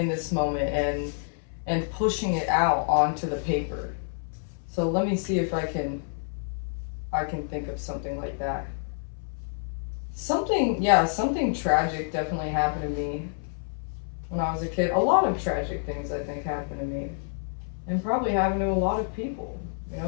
this moment, and pushing it out onto the paper. So let me see if I can think of something like that. Something tragic definitely happened to me when I was a kid. A lot of tragic things, I think, happened to me, and probably happened to a lot of people. You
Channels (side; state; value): right; silent; 58 dB below the other